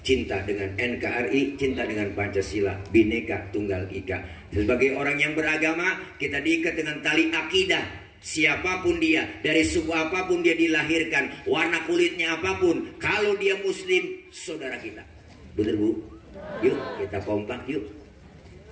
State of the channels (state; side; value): identical; both; correlation 1.00